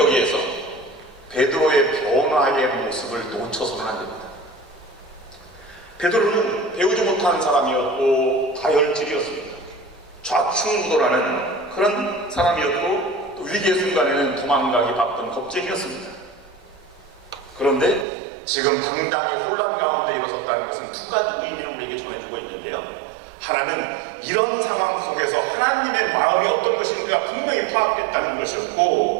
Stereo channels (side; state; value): left; drops out; at 18.1 s